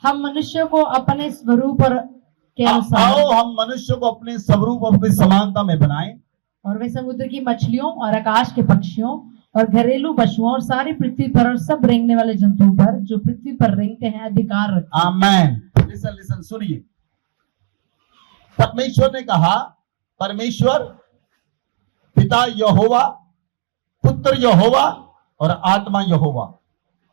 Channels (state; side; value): silent; left; digital silence